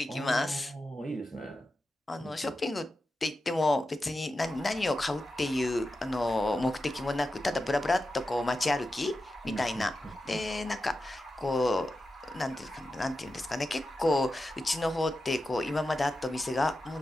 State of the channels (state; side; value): normal; both; correlation 0.91